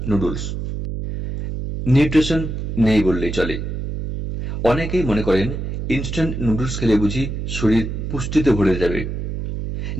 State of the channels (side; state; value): right; noise; hum, 5 dB below the sound